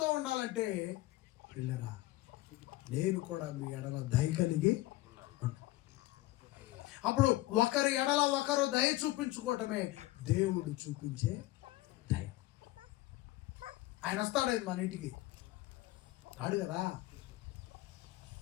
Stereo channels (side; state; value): right; quieter; 17.8 dB